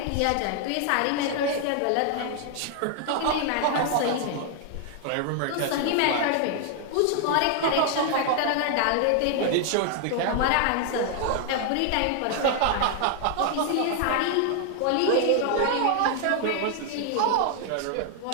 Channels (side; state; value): both; different; correlation 0.00